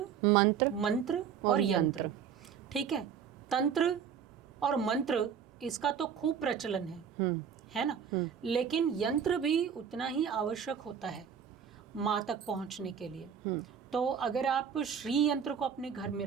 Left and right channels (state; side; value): quieter; left; 7.6 dB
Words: मंत्र और यंत्र, ठीक है। तंत्र और मंत्र इसका तो खूब प्रचलन है ना, लेकिन यंत्र भी उतना ही आवश्यक होता है माँ तक पहुंचने के लिए। तो अगर आप श्री यंत्र को अपने घर में